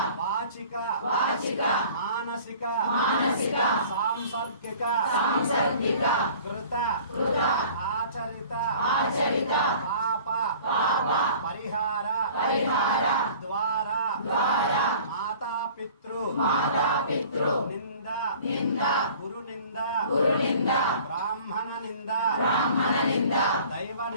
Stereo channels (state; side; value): inverted; both; correlation -0.48